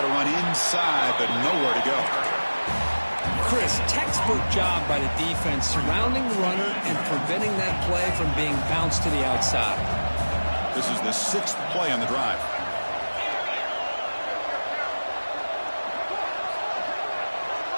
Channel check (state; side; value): inverted; both; correlation -1.00